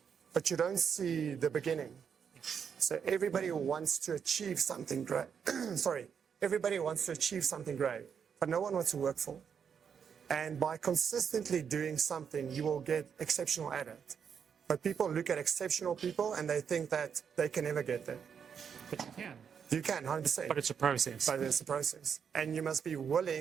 But you don't see the beginning. So everybody wants to achieve something great. Everybody wants to achieve something great, but no one wants to work for it. And by consistently doing something, you will get exceptional at it. But people look at exceptional people and they think that they can never get there. But you can. You can, 100%. But it's a process. But it's a process. And you must be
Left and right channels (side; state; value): left; quieter; 7.1 dB